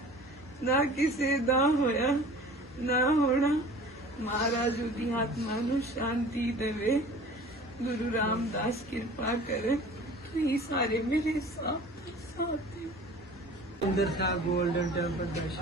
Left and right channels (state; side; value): normal; both; correlation 0.44